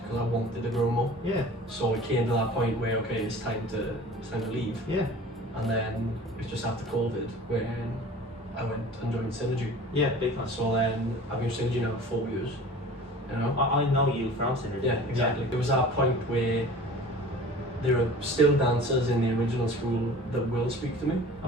because I wanted to grow more. Yeah. So it came to that point where, okay, it's time to leave. Yeah. And then it was just after COVID when I went and joined Synergy. Yeah, big time. So then I've been with Synergy now for 4 years. You know? I know you from Synergy. Yeah, exactly. There was that point where there are still dancers in the original school that will speak to me,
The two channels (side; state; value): both; normal; correlation 0.42